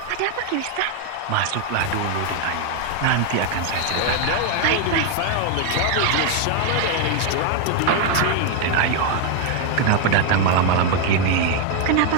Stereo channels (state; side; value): different; both; correlation 0.01